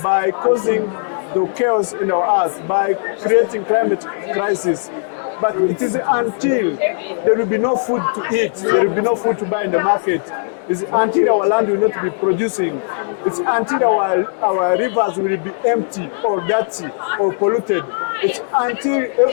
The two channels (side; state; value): right; silent; 67 dB below the other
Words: by causing the chaos in our earth, by creating climate crisis. But it is until there will be no food to eat, there will be no food to buy in the market, it's until our land will not be producing, it's until our rivers will be empty or dirty or polluted, it's until